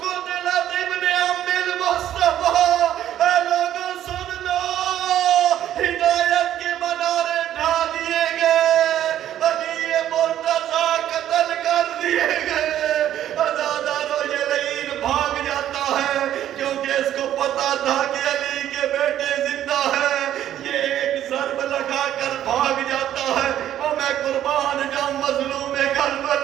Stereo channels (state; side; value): quieter; left; 11.6 dB